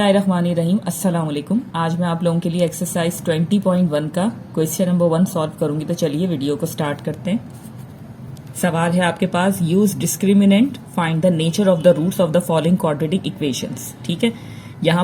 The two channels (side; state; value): both; identical; correlation 1.00